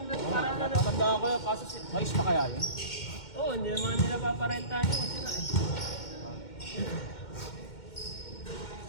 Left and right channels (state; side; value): late; right; 2.1 ms